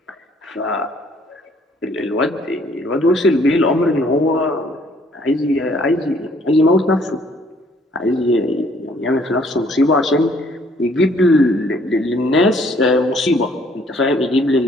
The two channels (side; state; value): both; normal; correlation 0.62